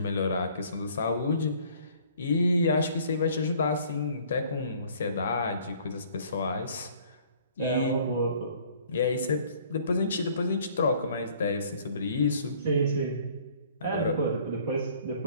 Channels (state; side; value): inverted; both; correlation -0.56